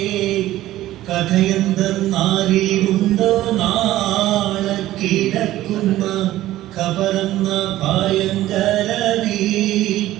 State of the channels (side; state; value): left; quieter; 14.9 dB